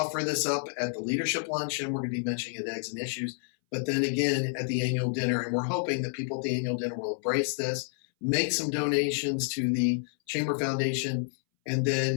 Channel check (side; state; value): right; silent; 58 dB below the other